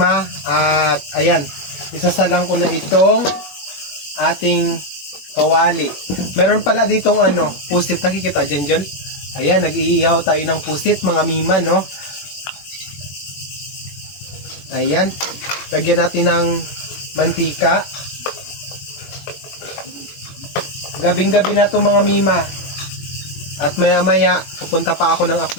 At ayan, isasalang ko na itong ating kawali. Meron pala ditong pusit, nakikita dyan. Ayan, nag-iihaw tayo ng pusit mga mima, no? Ayan, lagyan natin ng mantika. Gabing-gabi na to mga mima. At maya-maya, pupunta pa ako ng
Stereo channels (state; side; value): late; right; 21 ms